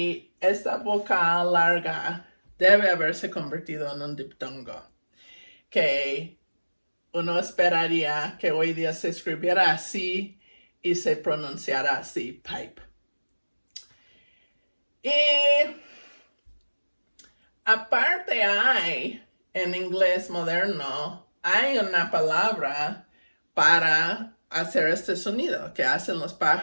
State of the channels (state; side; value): inverted; both; correlation -1.00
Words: esta vocal larga debe haberse convertido en un diptongo, que uno esperaría que hoy día se escribiera así y se pronunciara así, pipe. Y aparte hay, en inglés moderno, hay una palabra para hacer este sonido que hacen los